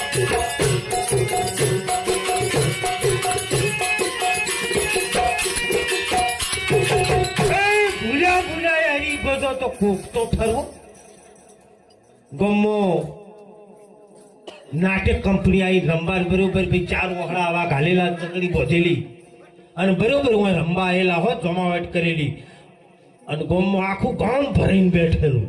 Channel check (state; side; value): identical; both; correlation 1.00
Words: ભૂલ્યા હરી ભજો તો કોક તો ખરો. ગમો નાટક કંપની આવી રમવા બરોબર ભાઈ 4 વખડા આવા ઘાલેલા, ચકડી બોધેલી અને બરોબર હું રમવા આવેલા હોત, જમાવટ કરેલી. અને ગામમાં આખું ગામ ભરીને બેઠેલું.